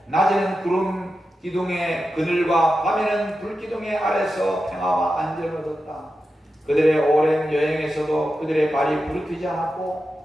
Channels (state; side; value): normal; both; correlation 0.90